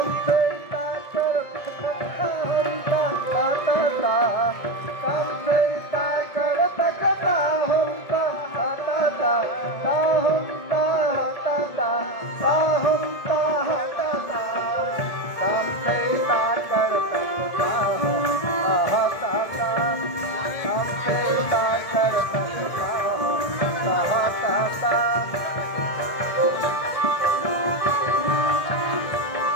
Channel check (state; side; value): late; right; 1.7 ms